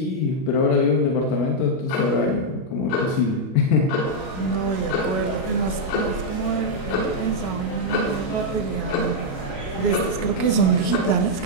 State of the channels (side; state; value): right; late; 37 ms